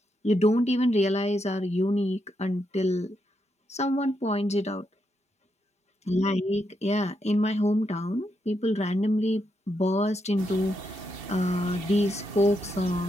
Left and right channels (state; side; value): normal; both; correlation 0.81